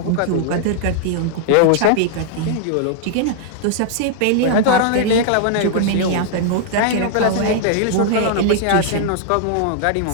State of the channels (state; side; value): different; both; correlation -0.01